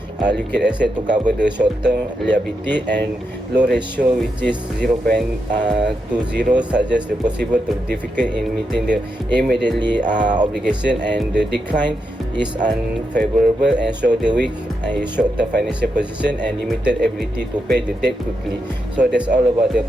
liquid asset to cover the short-term liability, and low ratio which is 0.20 suggests the possible to difficult in meeting the immediately obligation, and the decline is unfavorable and show the weak short-term financial position and limited ability to pay the debt quickly. So that's all about the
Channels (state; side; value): normal; both; correlation 0.84